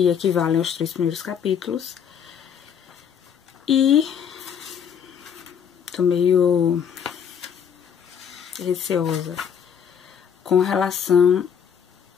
equivale aos 3 primeiros capítulos, e tô meio receosa com relação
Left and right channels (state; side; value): quieter; right; 7.8 dB